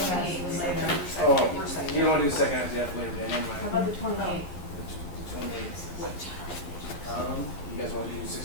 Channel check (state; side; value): late; right; 11 ms